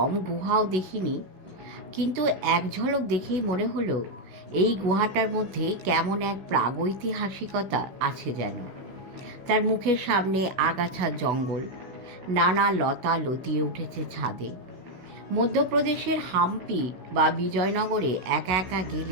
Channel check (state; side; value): late; left; 16 ms